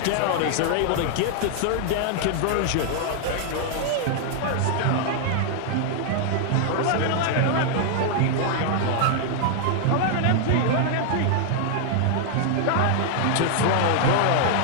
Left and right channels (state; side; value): different; both; correlation -0.01